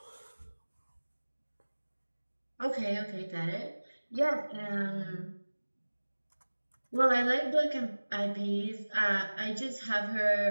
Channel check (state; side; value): inverted; both; correlation -1.00